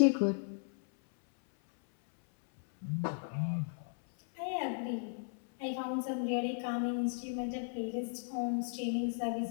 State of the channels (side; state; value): right; silent; 54 dB below the other